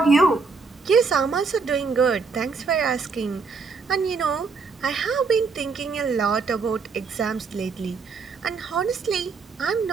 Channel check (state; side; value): quieter; left; 4.8 dB